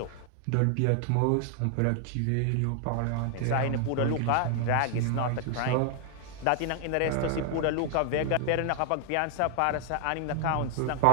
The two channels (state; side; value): different; both; correlation 0.00